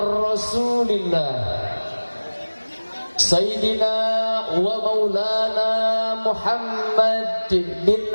sayyidina wa maulana Muhammad bin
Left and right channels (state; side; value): inverted; both; correlation -1.00